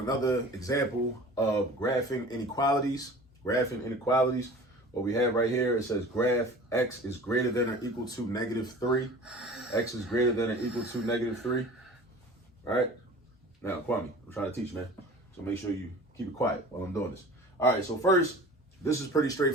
example of graphing inequalities. What we have right here, it says graph x is greater than or equal to -3. X is greater than or equal to -3. All right. Now, Kwame, I'm trying to teach, man. So make sure you keep it quiet while I'm doing this. All right, so first, this is pretty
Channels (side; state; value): both; normal; correlation 0.41